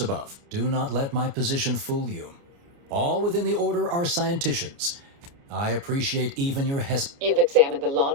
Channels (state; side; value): late; left; 29 ms